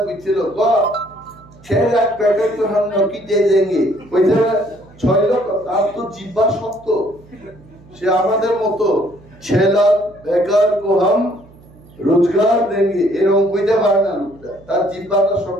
কইছিল, 6 লাখ প্যাকেট তো हम नौकी दे देंगे, কইতে 6 লাখ, তার তো জিহ্বা শক্ত। সে আমাদের মতো 6 লাখ বেকার को हम रोजगार देंगे এরকম কইতে পারে না লোকটা, তার জিহ্বাটা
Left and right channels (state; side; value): noise; right; hum, 24 dB below the sound